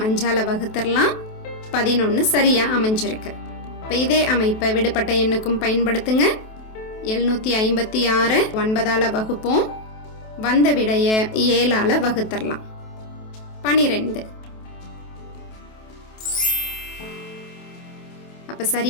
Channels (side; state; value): right; late; 28 ms